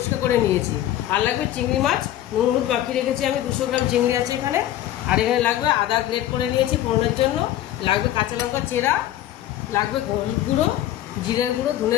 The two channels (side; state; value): right; quieter; 13.0 dB